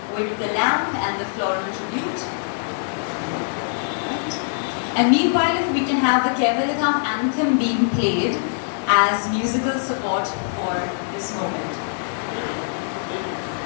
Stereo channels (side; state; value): right; silent; digital silence